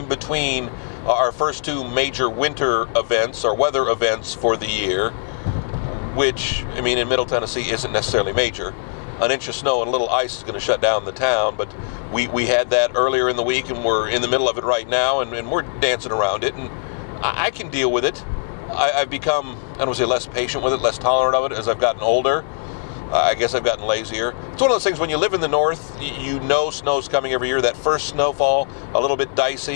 between our first two major winter events, or weather events for the year, which, I mean, in Middle Tennessee isn't necessarily major. An inch of snow and a little ice is going to shut down the town, but we had that earlier in the week, and we're in the middle of it right now, and we're dancing around it, and I can deal with it. I've become, I don't want to say less patient with it, less tolerant of it as I've gotten older. I guess I've gotten lazier. It's one of those things when you live in the north, you know snow's coming every year. That first snowfall, a little bit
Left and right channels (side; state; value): right; silent; digital silence